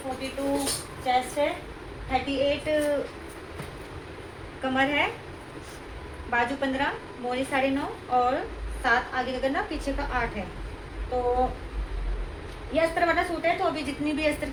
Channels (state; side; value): identical; both; correlation 1.00